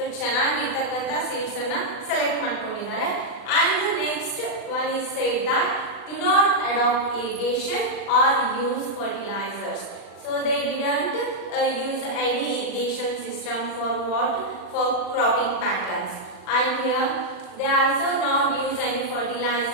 ಚೆನ್ನಾಗಿರ್ತಕ್ಕಂತ seeds ಅನ್ನು select ಮಾಡ್ಕೊಂಡಿದ್ದಾರೆ. And the next one is said that do not adopt irrigation or use fertilizers. So they didn't use any irrigation system for what? For cropping patterns. And here they also not use any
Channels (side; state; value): right; late; 40 ms